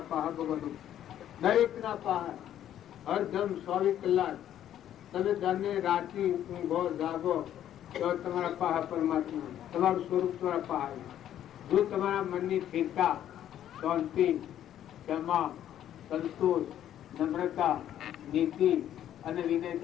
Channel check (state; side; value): quieter; right; 11.1 dB